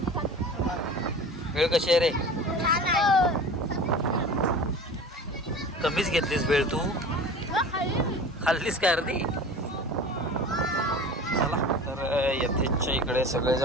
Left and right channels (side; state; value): both; normal; correlation 0.37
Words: भेळ कशी आहे रे? कमीच घेतलीस भेळ तू? खाल्लीस काय अर्धी? चला तर यथेच्या इकडे